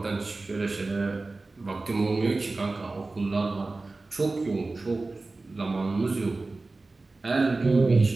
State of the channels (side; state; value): left; quieter; 3.4 dB